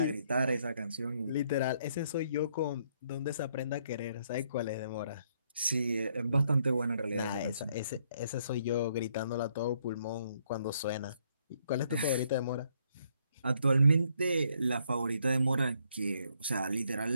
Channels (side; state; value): both; inverted; correlation -0.71